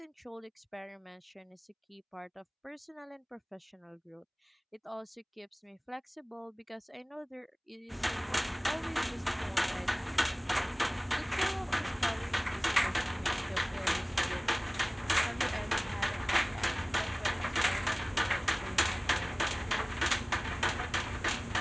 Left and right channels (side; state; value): both; identical; correlation 1.00